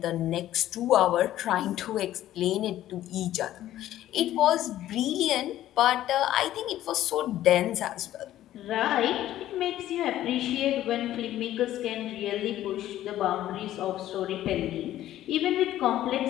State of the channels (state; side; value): quieter; right; 13.3 dB